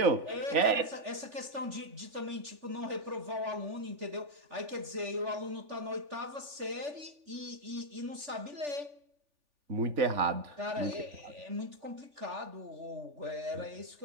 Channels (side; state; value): left; late; 3.4 ms